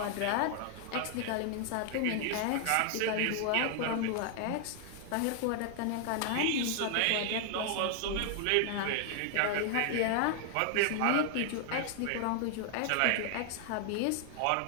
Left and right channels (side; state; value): both; different; correlation 0.00